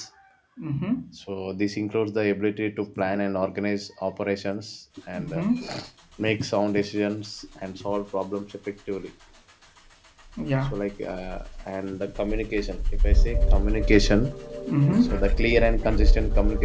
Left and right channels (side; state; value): both; identical; correlation 1.00